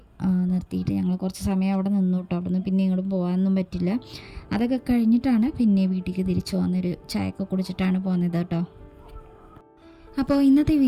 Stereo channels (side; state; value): both; identical; correlation 1.00